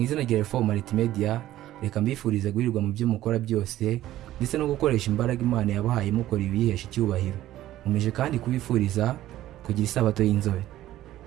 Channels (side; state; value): left; quieter; 14.1 dB